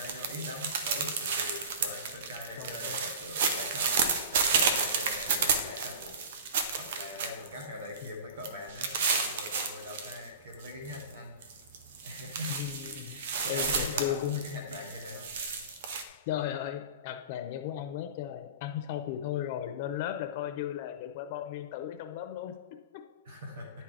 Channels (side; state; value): both; inverted; correlation -0.34